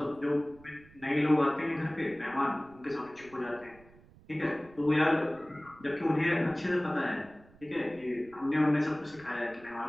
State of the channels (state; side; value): noise; right; rumble, 25 dB below the sound